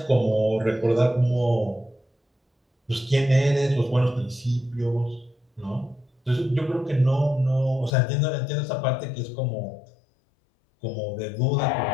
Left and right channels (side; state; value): right; drops out; at 7.9 s